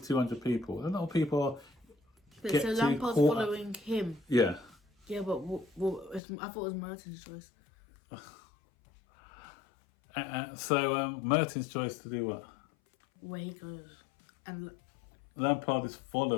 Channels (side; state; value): right; drops out; at 6.2 s